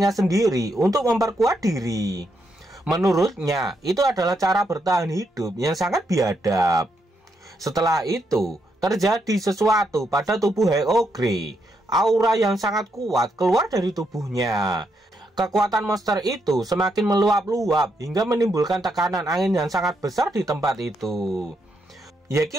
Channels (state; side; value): normal; both; correlation 0.79